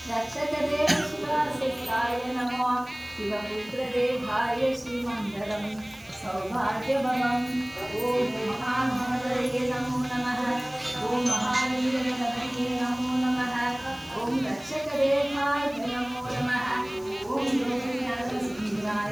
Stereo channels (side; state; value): right; noise; hiss, 24 dB below the sound